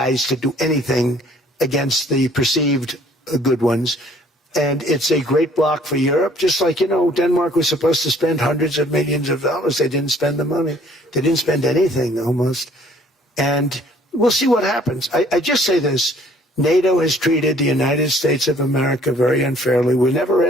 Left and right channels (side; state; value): both; normal; correlation 0.58